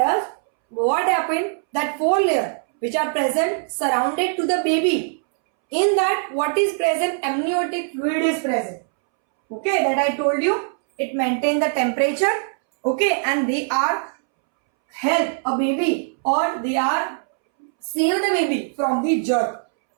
what happened? That 4 layers which are present surrounded to the baby. In that, what is present? Amniotic fluid is present. Okay, that I told you. It maintains the temperature. Okay, and they are help a baby, or they are save the baby from the germ.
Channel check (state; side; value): silent; left; 65 dB below the other